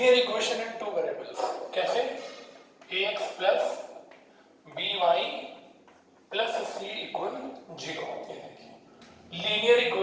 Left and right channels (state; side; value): identical; both; correlation 1.00